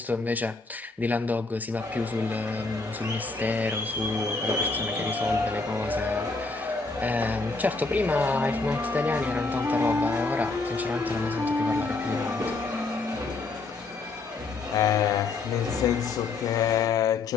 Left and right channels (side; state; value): right; quieter; 3.8 dB